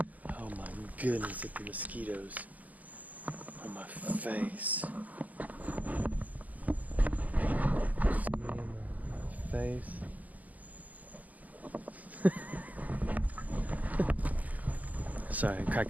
Oh my goodness, at the mosquitoes on my face. See me in my face. Sorry, I'm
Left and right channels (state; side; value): late; left; 0.076 ms